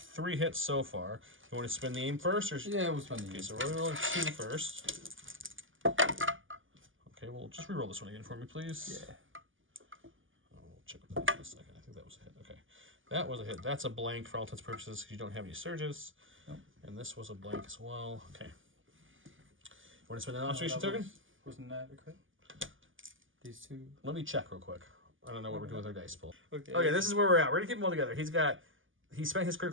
hits so far. You want to spin the aim first? Or... Yeah, we'll spend the Okay, so we're rolling 2 first. Okay, well, just reroll this one again for me, please. Yeah. I'll check with that in a second. I think that was a hit. Okay. That was a hit. That's a blank for all intents and purposes because you don't have any surges. Nope. And this was a blank as well. Okay. You want to spend an observation token? Wasn't that a crit? These 2. Let me check real quick. I don't know what we're doing with our dice pool. Okay. Okay, this is where we're at. We're going to keep them all together. He spent his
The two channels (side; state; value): left; late; 0.58 ms